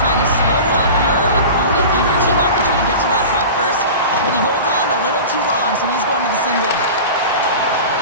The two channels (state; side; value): inverted; both; correlation -0.34